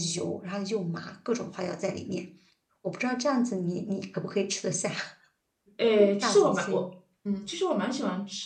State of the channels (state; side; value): identical; both; correlation 1.00